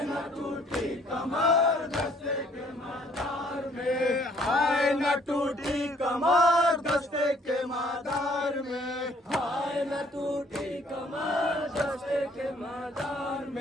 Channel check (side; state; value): both; normal; correlation 0.62